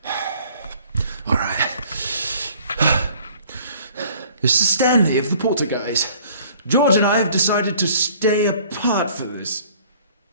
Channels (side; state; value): both; inverted; correlation -0.54